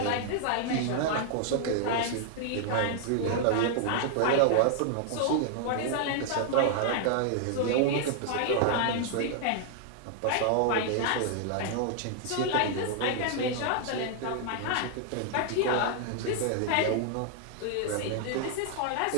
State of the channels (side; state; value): both; different; correlation 0.00